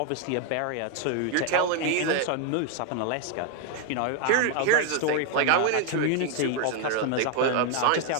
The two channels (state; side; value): different; both; correlation 0.01